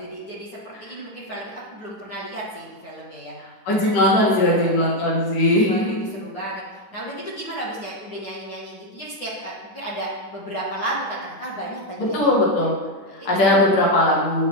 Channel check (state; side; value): late; right; 9.9 ms